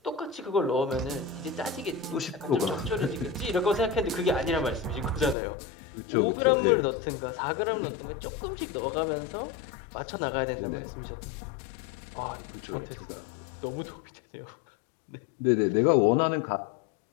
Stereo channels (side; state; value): right; drops out; at 5.4 s